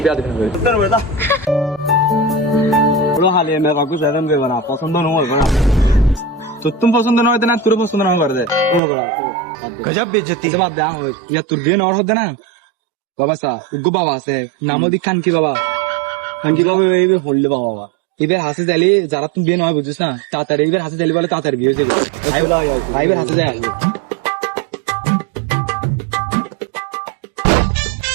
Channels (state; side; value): drops out; left; at 8.8 s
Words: বিয়া দেখেন বড় হালে মে কাকু সেরকম দেব না, পছন্দ নয় না তো তুমি পছন্দ নয় না, তোর পছন্দ না করে দে। গজব বেজতি বাদ দে ইয়া তোর বিয়ে নর হতে না বাবা সা উগ্র বাবা আছে নামও দি খান কি বাবা, খান কি বাবা এইবার হললে বাবা এবার হাসে চাইলে যারা তুমি বিয়ে নয় বুঝছিস না তাড়াতাড়ি এবার হাসে চাইলে বলে তাড়াতাড়ি বিয়ে হয়ে যাবে। আইবার হাসে যায় আসবে